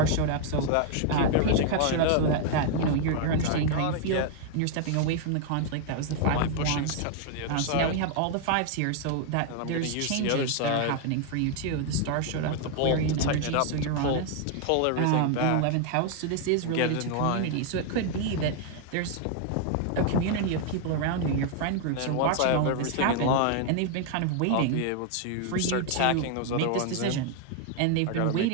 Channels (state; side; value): different; both; correlation 0.00